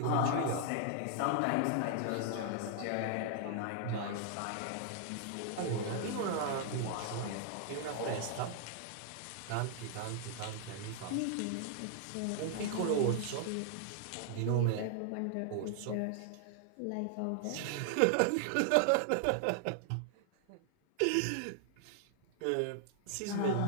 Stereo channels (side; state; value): both; different; correlation 0.00